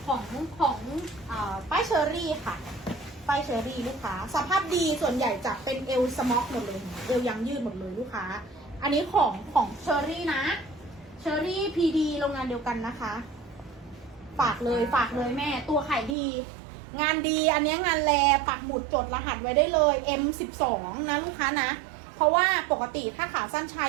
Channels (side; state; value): left; drops out; at 16.2 s